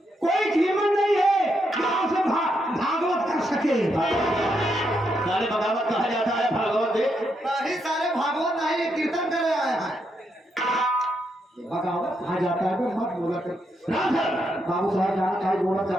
कोई कीमत नहीं है गांव से भागवत कर सके। सारे बगावत कहा जाता है, भागवत दे नहीं सारे भागवत नहीं, ये कीर्तन करे आए हैं। बगावत कहा जाता है, तो मत बोला कर। राम सर, बाबू साहब जाना चाहे बोला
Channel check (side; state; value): both; normal; correlation 0.80